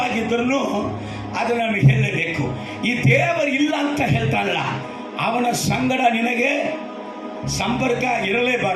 ಅದು ನಾನು ಹೇಳಲೇಬೇಕು. ಈ ದೇವರು ಇಲ್ಲ ಅಂತ ಹೇಳ್ತಾನಲ್ಲ, ಅವನ ಸಂಗಡ ನಿನಗೆ ಸಂಪರ್ಕ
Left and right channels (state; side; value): identical; both; correlation 1.00